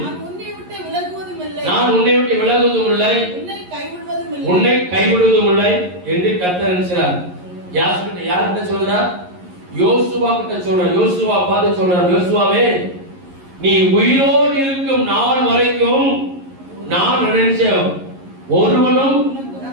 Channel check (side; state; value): left; late; 11 ms